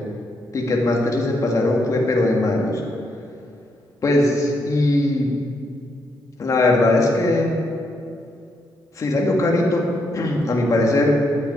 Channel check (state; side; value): normal; both; correlation 0.78